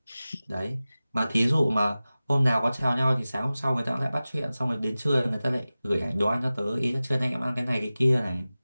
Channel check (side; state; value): both; inverted; correlation -0.97